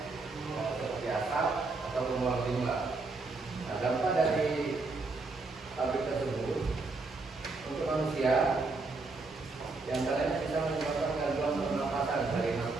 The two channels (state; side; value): quieter; left; 3.7 dB